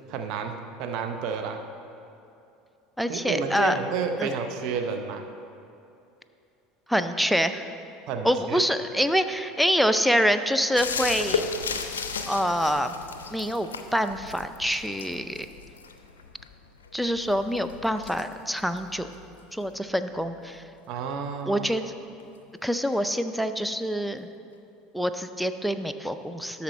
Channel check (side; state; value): both; normal; correlation 0.75